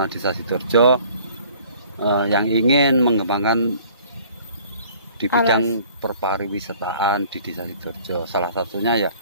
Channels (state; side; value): inverted; both; correlation -0.53